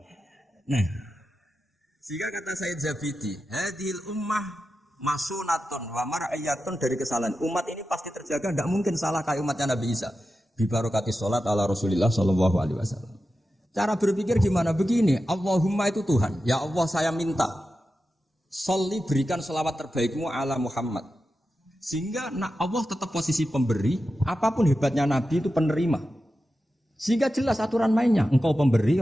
Nah, sehingga kata Sayyid Zabidi, hadhil ummah masunatun wa mar'ayatun dari kesalahan. Umat ini pasti terjaga, tidak mungkin salah kayak umatnya Nabi Isa. Bi barokati sholat ala Rasulillah sallallahu alaihi wasallam. Cara berpikir gimana? Begini, Allahumma itu Tuhan. Ya Allah saya minta, sholli berikan selawat terbaikmu ala Muhammad. Sehingga Allah tetap posisi pemberi, apapun hebatnya Nabi itu penerima. Sehingga jelas aturan mainnya, engkau pemberi,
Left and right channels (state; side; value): normal; both; correlation 0.91